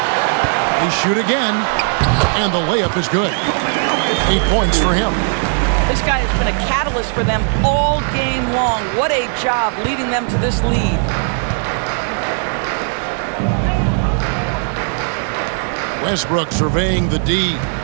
They shoot again. And the layup is good. 8 points for him. This guy has been a catalyst for them all game long. What a job leading them to this lead. Westbrook surveying the D.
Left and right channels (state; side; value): silent; left; 55 dB below the other